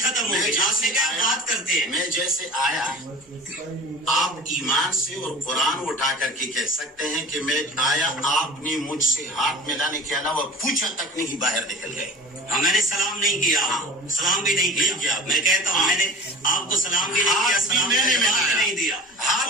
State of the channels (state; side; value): normal; both; correlation 0.39